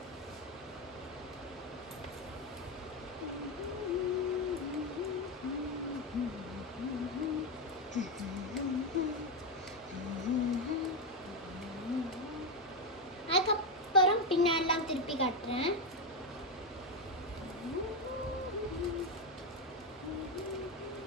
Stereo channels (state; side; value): normal; both; correlation 0.08